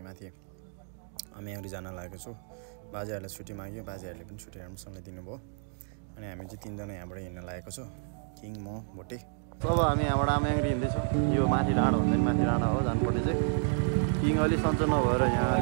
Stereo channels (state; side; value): silent; left; digital silence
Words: माथि अम्याङ्ग्री जान लागेको छु। बाजेहरूले छुट्टी माग्यो, बाजेहरूले पनि छुट्टी राम्रोसँगले दिनुभयो। अनि हामी चाहिँ तीनजना यहाँबाट हिँड्न लागेको छु, किङ, म, भोटे। अब हामी यहाँबाट अम्याङ्ग्री हिँड्दैछौँ। यो माथि डाँडा हुँदैन, माथि डाँडा हो जानुपर्ने चाहिँ। किङ अलि सन्चो नभएर यहाँ